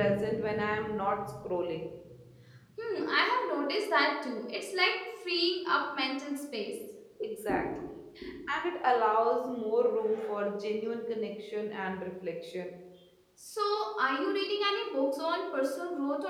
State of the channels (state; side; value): identical; both; correlation 1.00